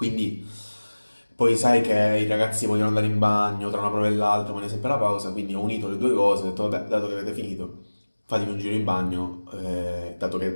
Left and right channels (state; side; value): inverted; both; correlation -1.00